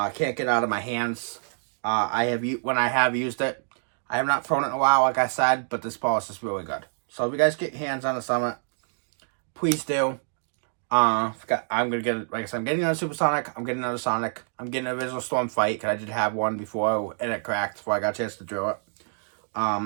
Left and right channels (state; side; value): silent; left; digital silence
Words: get it out of my hands. When I have used it, I have not thrown it in a while, like I said, but this ball is just really good. So if you guys get your hands on the Summit, please do. I'm gonna get it. Like I said, I'm getting another Supersonic. I'm getting another Sonic. I'm getting an original Storm Fight, because I did have one before and it cracked before I got a chance to drill it.